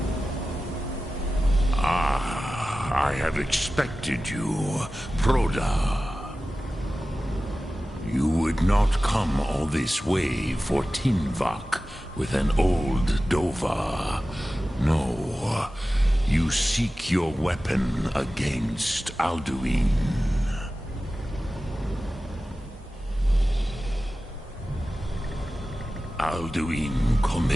Ah, I have expected you, Proda. You would not come all this way for Tinvak with an old Dova. No, you seek your weapon against Alduin. Alduin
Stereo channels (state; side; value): normal; both; correlation 0.95